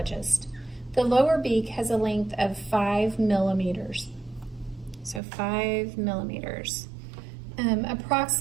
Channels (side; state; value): left; drops out; at 5.2 s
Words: The lower beak has a length of 5 millimeters. So 5 millimeters.